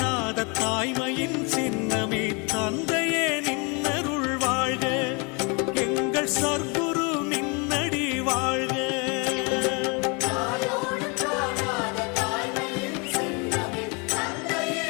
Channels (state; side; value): quieter; right; 31.7 dB